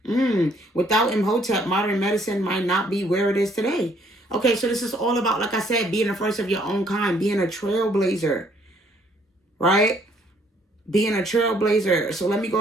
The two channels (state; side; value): normal; both; correlation 0.65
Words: Without Imhotep, modern medicine might not be where it is today. Okay, so this is all about, like I said, being the first of your own kind, being a trailblazer, right? Being a trailblazer. So let me go